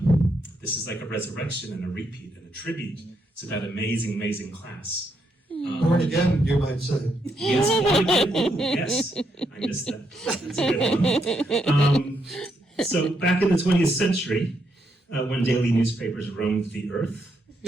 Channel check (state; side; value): normal; both; correlation 0.78